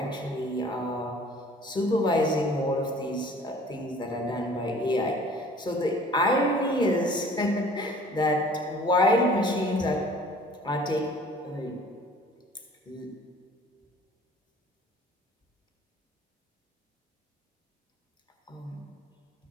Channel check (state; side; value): normal; both; correlation 0.50